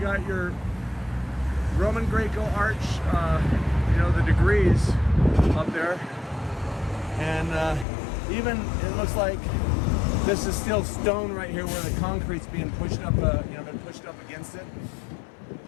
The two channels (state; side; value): drops out; right; at 7.9 s